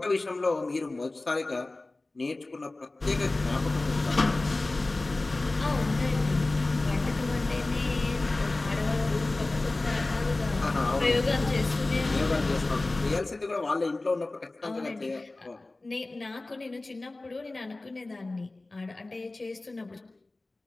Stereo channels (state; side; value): quieter; right; 3.0 dB